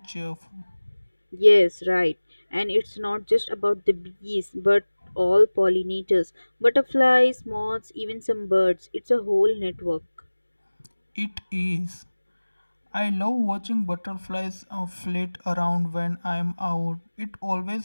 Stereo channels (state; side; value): inverted; both; correlation -1.00